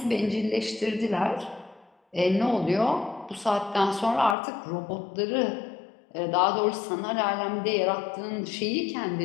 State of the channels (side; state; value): right; drops out; at 4.4 s